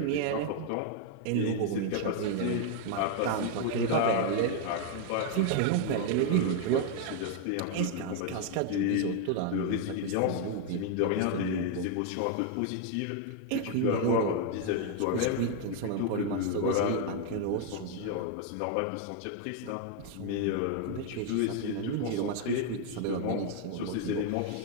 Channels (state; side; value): different; both; correlation 0.00